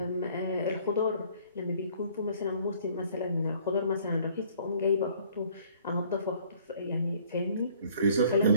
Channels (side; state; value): both; inverted; correlation -0.58